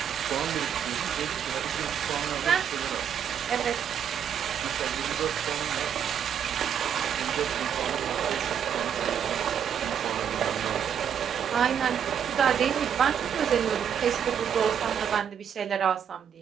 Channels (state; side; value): quieter; left; 8.4 dB